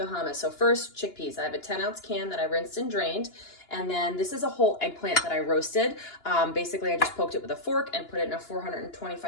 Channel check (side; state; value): right; late; 2.9 ms